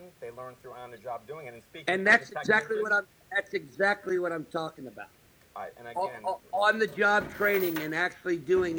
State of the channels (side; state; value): both; identical; correlation 1.00